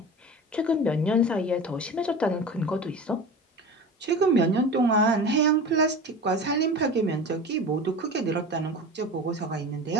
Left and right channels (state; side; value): normal; both; correlation 0.33